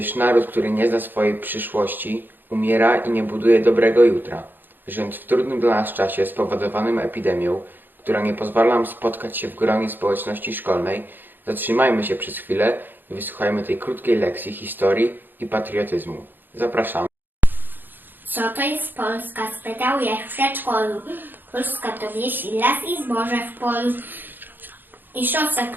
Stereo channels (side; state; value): left; late; 0.093 ms